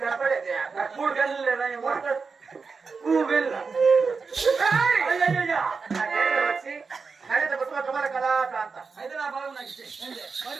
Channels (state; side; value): quieter; left; 4.9 dB